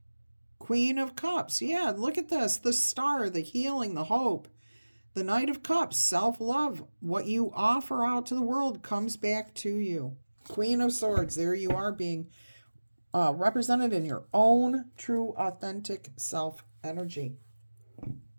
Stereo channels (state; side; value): inverted; both; correlation -1.00